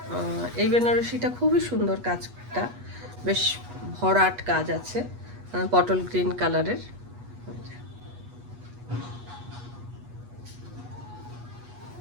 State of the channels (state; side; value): late; left; 8.3 ms